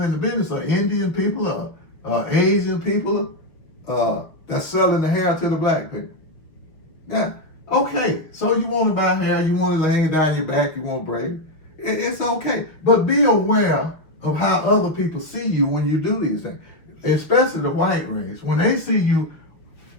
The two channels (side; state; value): right; late; 6.0 ms